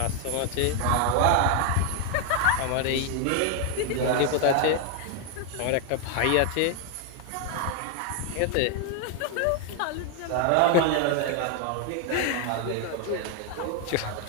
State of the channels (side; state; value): both; different; correlation 0.00